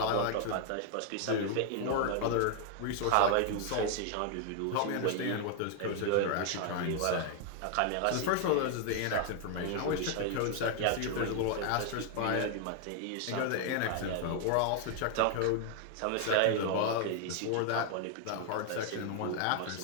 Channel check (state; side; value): different; both; correlation 0.00